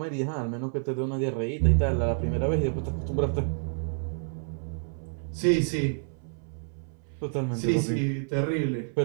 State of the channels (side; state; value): left; silent; 59 dB below the other